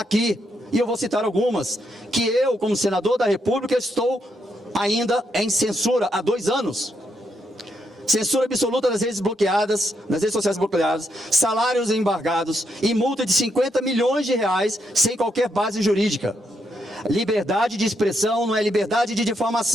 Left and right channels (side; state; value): both; normal; correlation 0.79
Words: E eu vou citar algumas, que eu, como senador da República, estou ainda em censura há 2 anos. Censura absoluta das redes bloqueadas, das redes sociais bloqueadas, salários embargados e multa de R$50 milhões sem qualquer base jurídica. Liberdade de expressão não é liberdade de